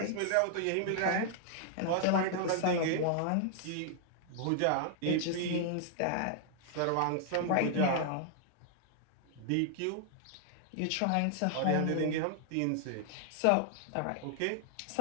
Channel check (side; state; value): both; different; correlation -0.01